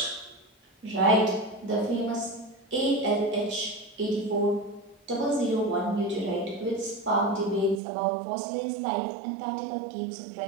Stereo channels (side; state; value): left; drops out; at 7.8 s